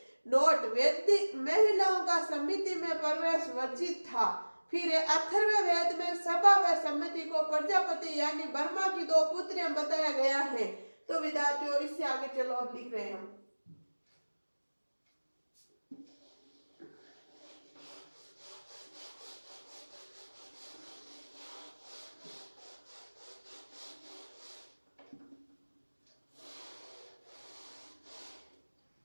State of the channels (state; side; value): inverted; both; correlation -1.00